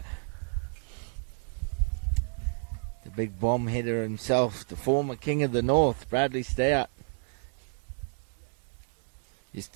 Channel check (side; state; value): left; silent; 58 dB below the other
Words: The big bomb hitter himself, the former king of the north, Bradley Stout. Used